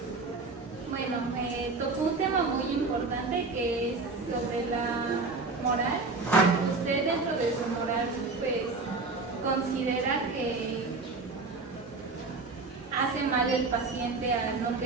Bueno, tocó un tema muy importante que es sobre la moral. ¿Usted dentro de su moral pues considera que hace mal el paciente al no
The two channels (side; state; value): left; quieter; 3.9 dB